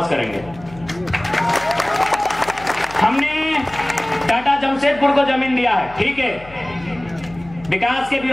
करेंगे। हमने टाटा जमशेदपुर को जमीन दिया है, ठीक है, विकास के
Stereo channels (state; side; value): noise; left; hum, 20 dB below the sound